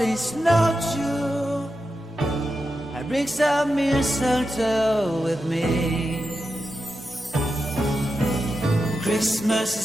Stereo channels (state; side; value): normal; both; correlation 0.89